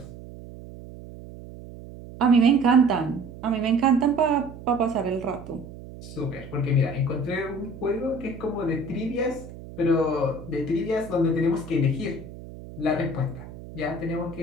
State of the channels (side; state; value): right; noise; hum, 15 dB below the sound